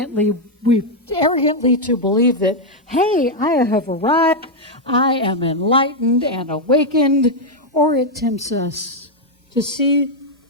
to believe that, hey, I have arrived, I am enlightened and awakened, or it tempts us to see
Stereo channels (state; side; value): normal; both; correlation 0.01